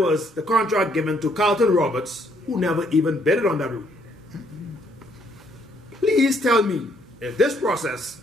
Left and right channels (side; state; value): both; normal; correlation 0.68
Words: the contract given to Carlton Roberts, who never even bidded on that route? Please tell me if this process